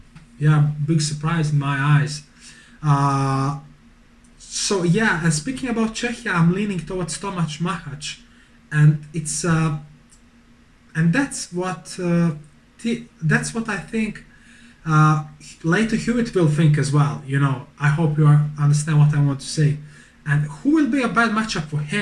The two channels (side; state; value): both; identical; correlation 1.00